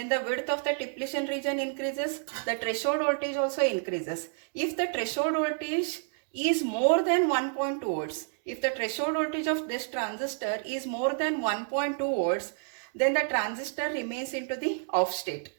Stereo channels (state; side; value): silent; left; digital silence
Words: the width of the depletion region increases, the threshold voltage also increases. If the threshold voltage is more than 1.2 volts, if the threshold voltage of this transistor is more than 1.2 volts, then the transistor remains into the off state.